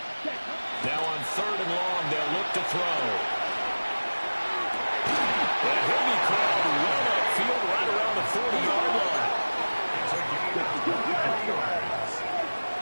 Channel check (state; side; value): inverted; both; correlation -1.00